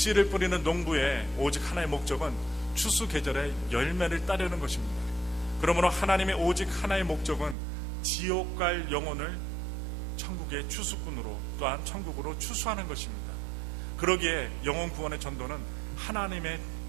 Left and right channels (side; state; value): left; drops out; at 7.6 s